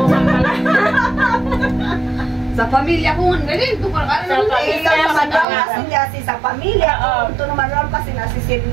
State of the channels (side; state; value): left; drops out; at 5.5 s